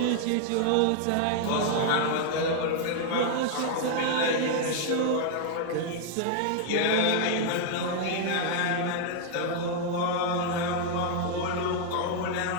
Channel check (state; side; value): different; both; correlation 0.00